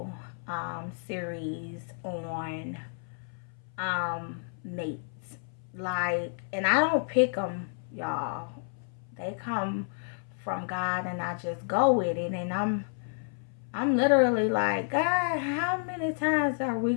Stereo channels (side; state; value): right; silent; 58 dB below the other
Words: series on mates. Like, and I don't pick them, y'all. They come from God, and I just go with it. And I'm literally like, God, how many times are we